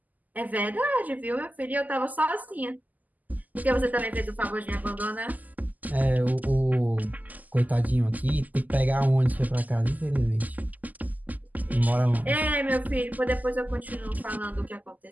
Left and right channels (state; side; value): late; left; 0.080 ms